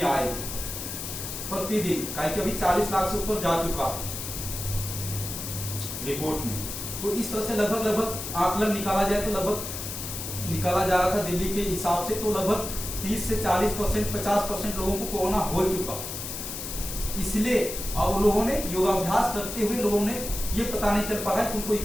आए प्रतिदिन, कि अभी 40 लाख से ऊपर जा चुका है रिपोर्ट में। तो इस तरह से लगभग आकलन निकाला जाए तो लगभग निकाला जा रहा था दिल्ली के हिसाब से, तो लगभग 30 से 40%, 50% लोगों को कोरोना हो चुका। इसलिए और लोगों ने योगाभ्यास करते हुए लोगों ने ये पता नहीं चल पा रहा है कि उनको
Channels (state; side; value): noise; left; hiss, 7 dB below the sound